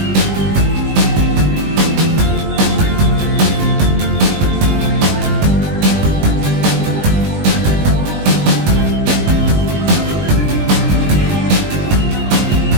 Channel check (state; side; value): late; left; 20 ms